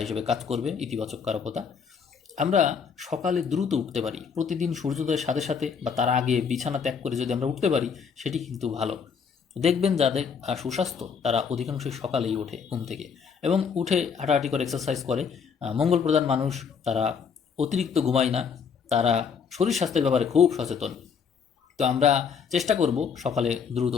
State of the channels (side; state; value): right; quieter; 6.4 dB